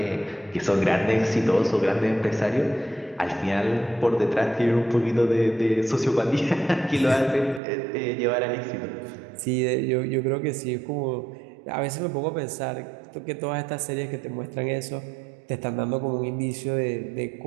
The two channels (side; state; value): left; drops out; at 7.6 s